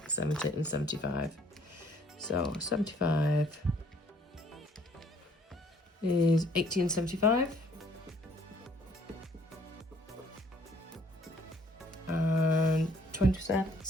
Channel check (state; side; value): normal; both; correlation 0.61